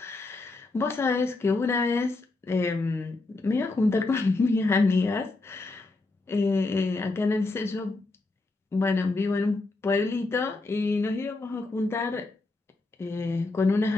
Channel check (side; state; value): right; quieter; 3.2 dB